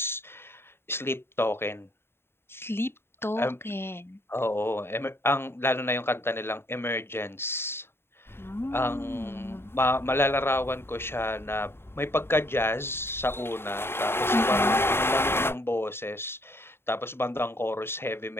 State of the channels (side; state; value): right; late; 0.11 ms